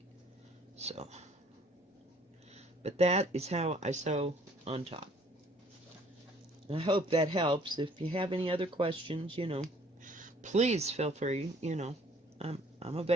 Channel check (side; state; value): both; normal; correlation 0.57